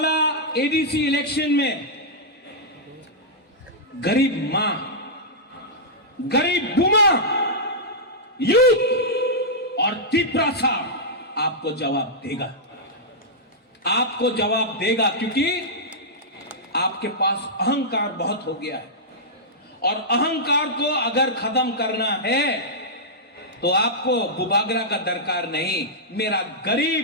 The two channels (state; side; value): normal; both; correlation -0.11